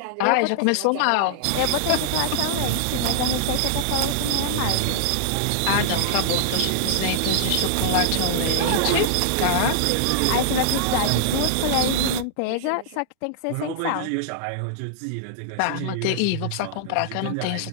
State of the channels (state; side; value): different; both; correlation -0.01